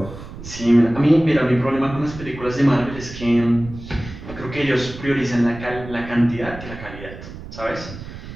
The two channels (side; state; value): right; noise; rumble, 13 dB below the sound